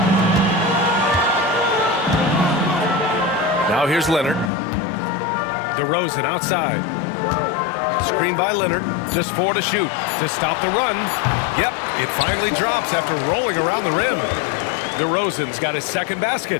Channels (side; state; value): right; drops out; at 4.5 s